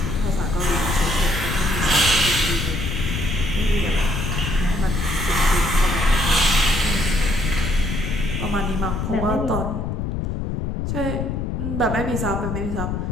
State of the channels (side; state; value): left; noise; rumble, 2 dB below the sound